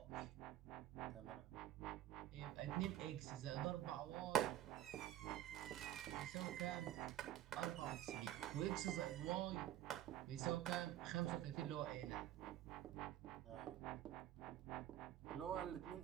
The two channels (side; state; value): left; quieter; 12.5 dB